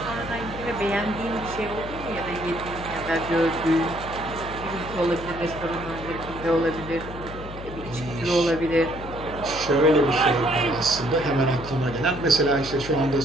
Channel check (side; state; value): left; noise; hum, 11 dB below the sound